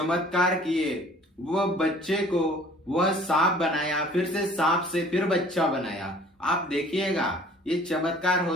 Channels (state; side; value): normal; both; correlation 0.51